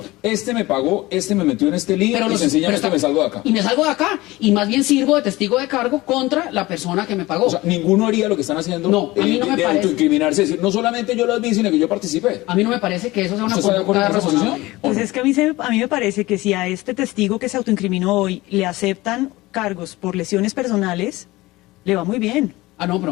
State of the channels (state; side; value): quieter; right; 19.7 dB